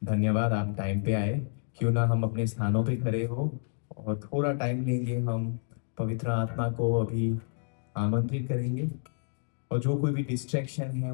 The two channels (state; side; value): silent; right; digital silence